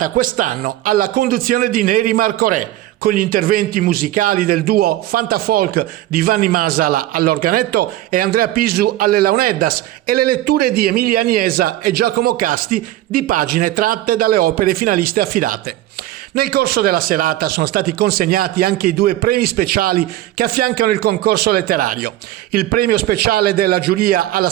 quest'anno alla conduzione di Neri Marco Re, con gli interventi musicali del duo Fantafolk di Vanni Masala all'organetto e Andrea Pisu alle launeddas e le letture di Emilia Agnesa e Giacomo Casti di pagine tratte dalle opere finaliste affidate. Nel corso della serata sono stati consegnati anche i due premi speciali che affiancano il concorso letterario. Il premio speciale della giuria alla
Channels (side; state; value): left; quieter; 14.8 dB